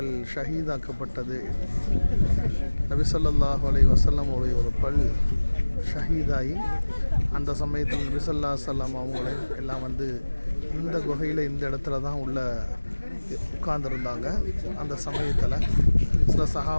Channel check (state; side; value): inverted; both; correlation -1.00